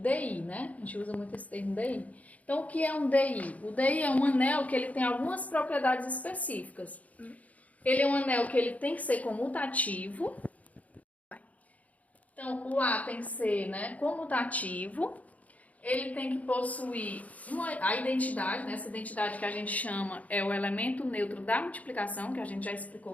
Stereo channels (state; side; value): late; right; 0.071 ms